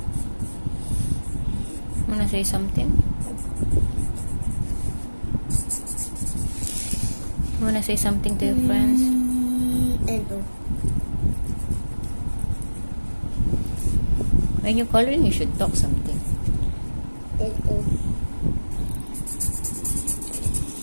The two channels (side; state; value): both; inverted; correlation -1.00